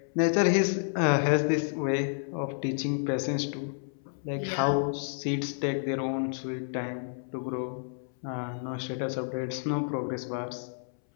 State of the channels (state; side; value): silent; right; 58 dB below the other